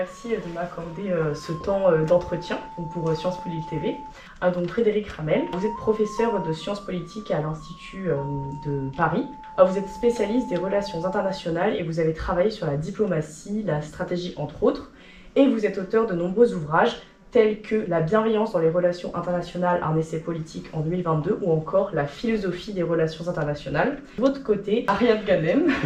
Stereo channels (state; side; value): identical; both; correlation 1.00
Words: de m'accorder ce temps d'entretien pour Sciences Po Lille TV. Donc Frédéric Ramel, vous êtes professeur de sciences politiques à l'Institut de Paris. Vous êtes spécialiste des relations internationales et vous avez travaillé sur la diplomatie, la stratégie entre autres. Et vous êtes auteur de nombreux ouvrages tels que La bienveillance dans les relations internationales, un essai politique en 2022 ou encore La philosophie des relations internationales. De votre côté, Ariane Ganem,